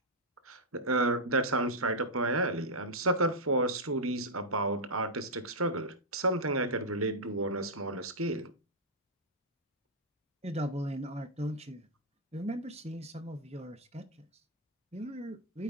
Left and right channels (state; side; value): normal; both; correlation -0.07